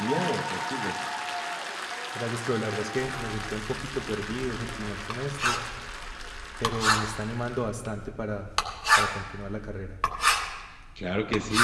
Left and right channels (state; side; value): identical; both; correlation 1.00